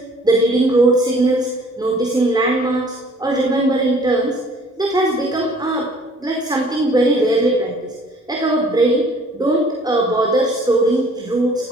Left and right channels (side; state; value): both; normal; correlation 0.56